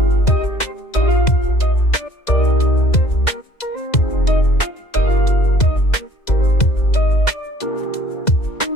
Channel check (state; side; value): late; right; 2.0 ms